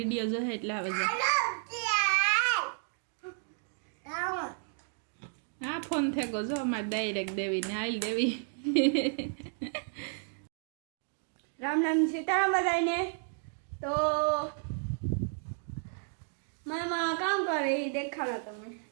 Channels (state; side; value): silent; left; 56 dB below the other